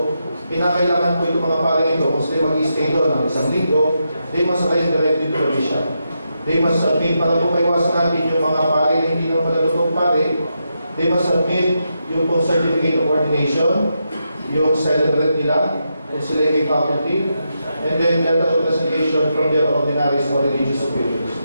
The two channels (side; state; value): both; inverted; correlation -0.84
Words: kinakailangan po itong mga pare ito, kung sila mag-stay doon ng isang linggo, they must write directly to the bishop. They must submit, para po maiwasan natin yung mga pare na hindi naman malalutong pare, they must submit yung pong certificate of ordination, yung celebrate nila, kung sila yung may faculty, and then letter of resignation from their ordinaries or religious superiors.